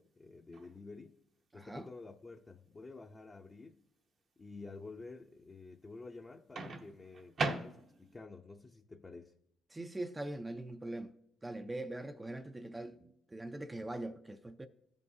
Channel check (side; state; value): both; normal; correlation 0.87